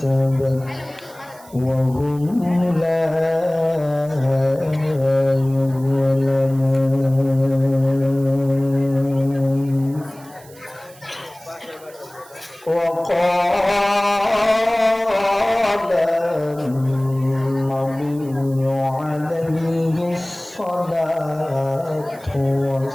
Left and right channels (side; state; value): right; noise; hiss, 24 dB below the sound